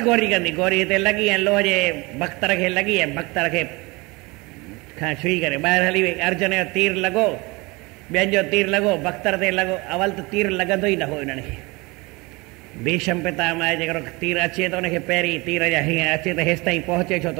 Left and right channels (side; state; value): left; quieter; 25.0 dB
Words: गोरी कंदी। गोरी हिते लॻी ऐं लोह जे बख़्तर खे लॻी ऐं बख़्तर खे खां छुई करे ॿाहिरि हली वई। अर्जुन जो तीर लॻो, ॿियनि जो तीर लॻो, बख़्तर ते लॻो। अवल त तीर लॻंदो ई न हो हिननि खे। भीष्म पितामह जेकॾहिं तीर अचे त हुनखे पहिरीं तीर जा हीअं अचे त हेसि ताईं पहुचे छो त